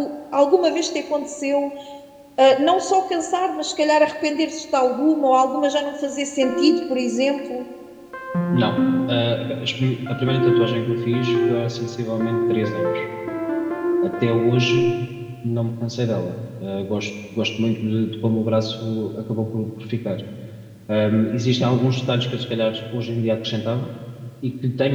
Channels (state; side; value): identical; both; correlation 1.00